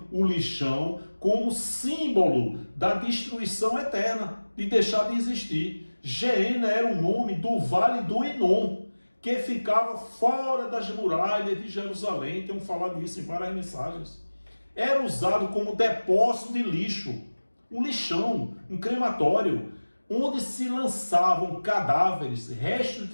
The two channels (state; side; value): inverted; both; correlation -1.00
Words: o lixão, como símbolo da destruição eterna, de deixar de existir. Geena era o nome do vale do Enom, que ficava fora das muralhas de Jerusalém. Temos falado isso em várias mensagens. Era usado como depósito de lixo, um lixão, um crematório, onde se lançavam cadáveres, restos